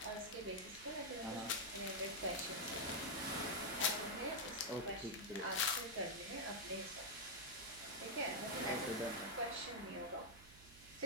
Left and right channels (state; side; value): noise; right; hum, 19 dB below the sound